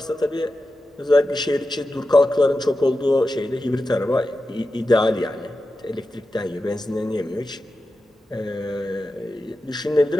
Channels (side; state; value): both; normal; correlation 0.92